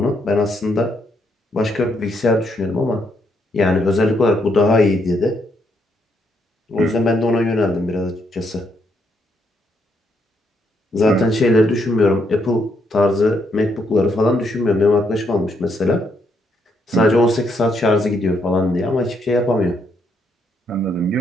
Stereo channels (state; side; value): normal; both; correlation 0.76